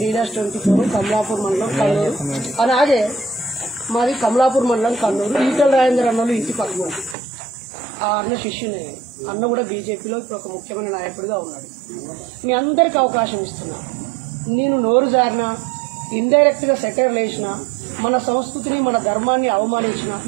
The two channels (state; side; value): drops out; left; at 7.2 s